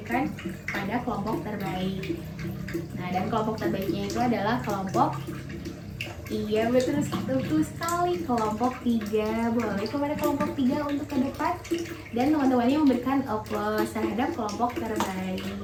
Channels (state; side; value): identical; both; correlation 1.00